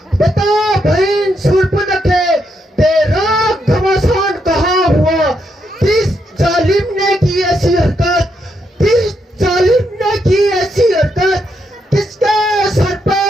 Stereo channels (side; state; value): both; normal; correlation 0.79